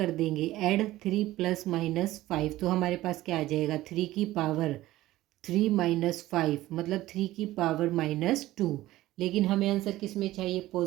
देंगे ऐड, 3 + -5, तो हमारे पास क्या आ जाएगा, 3 की पावर 3 - 5 मतलब 3 की पावर -2। लेकिन हमें आंसर किस में चाहिए,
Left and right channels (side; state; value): left; quieter; 16.2 dB